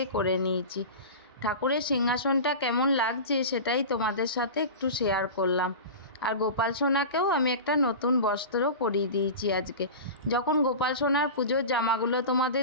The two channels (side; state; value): both; inverted; correlation -0.30